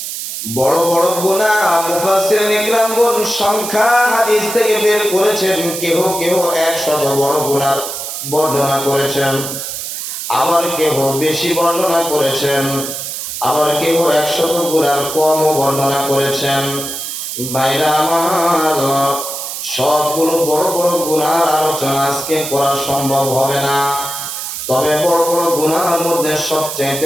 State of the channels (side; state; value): right; noise; hiss, 6 dB below the sound